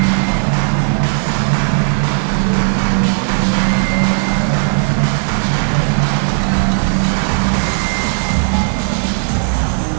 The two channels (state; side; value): silent; left; 66 dB below the other